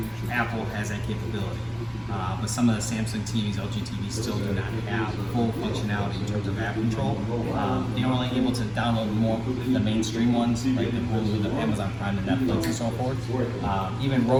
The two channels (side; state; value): both; identical; correlation 1.00